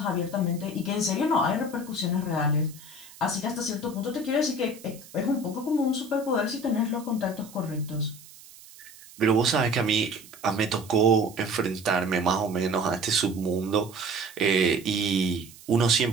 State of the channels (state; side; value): noise; right; hiss, 20 dB below the sound